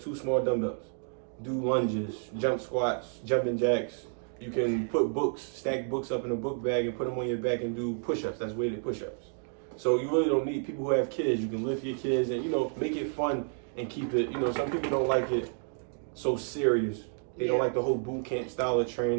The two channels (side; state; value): left; silent; 58 dB below the other